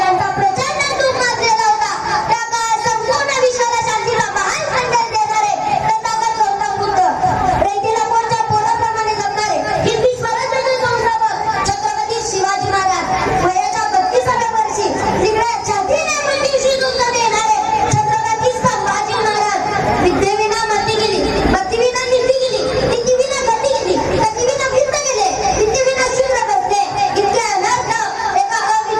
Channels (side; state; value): both; identical; correlation 1.00